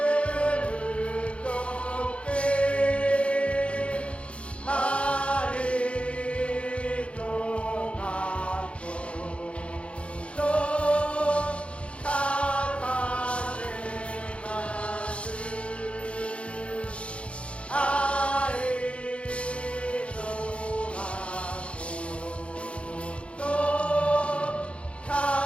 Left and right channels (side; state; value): right; late; 0.060 ms